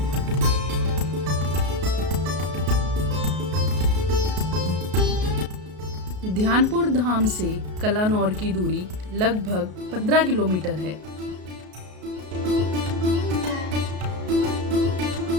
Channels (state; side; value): late; left; 33 ms